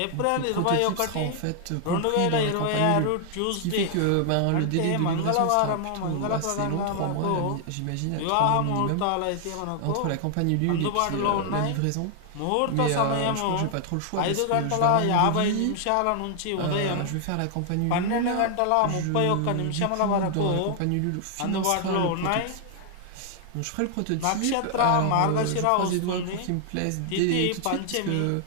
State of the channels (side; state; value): both; different; correlation 0.00